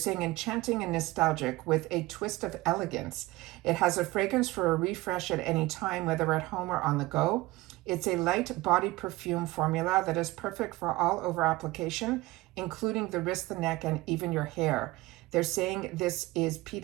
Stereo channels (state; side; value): quieter; left; 19.8 dB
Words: enchanting and nostalgic with a twist of elegance. It has a fragrance for a refresh at any time, whether at home or on the go. It's a light body perfume formula that is perfect for all over application, including the wrist, the neck, and even your hair. They're saying this is